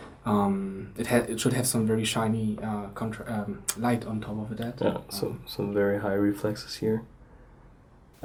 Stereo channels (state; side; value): identical; both; correlation 1.00